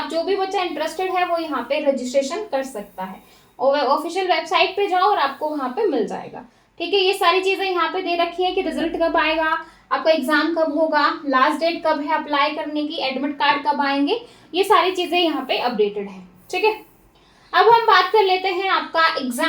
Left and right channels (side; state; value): both; identical; correlation 1.00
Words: जो भी बच्चा इंटरेस्टेड है वो यहाँ पे रजिस्ट्रेशन कर सकता है। ऑफिशियल वेबसाइट पे जाओ और आपको वहां पे मिल जाएगा। ठीक है, ये सारी चीजें यहाँ पे दे रखी है कि रिजल्ट कब आएगा, आपका एग्जाम कब होगा, लास्ट डेट कब है अप्लाई करने की, एडमिट कार्ड कब आएंगे, ये सारी चीजें यहाँ पे अपडेटेड है। ठीक है, अब हम बात कर लेते हैं आपका